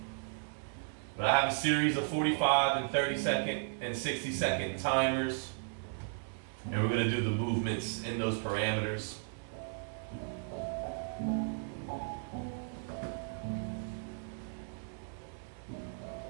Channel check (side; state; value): left; silent; 54 dB below the other